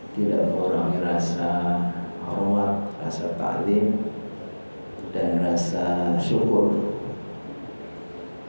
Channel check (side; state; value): both; inverted; correlation -1.00